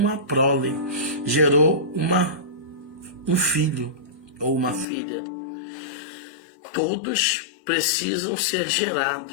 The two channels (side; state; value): right; drops out; at 4.9 s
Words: prole, gerou um filho ou uma filha. Todos precisam ser